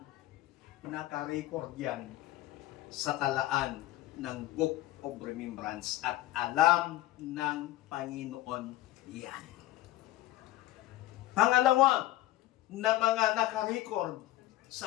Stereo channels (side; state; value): right; quieter; 15.8 dB